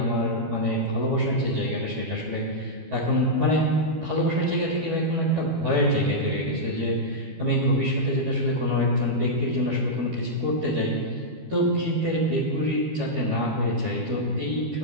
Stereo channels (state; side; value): late; left; 12 ms